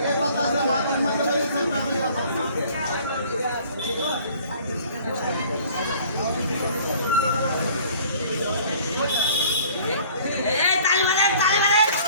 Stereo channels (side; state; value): both; inverted; correlation -0.52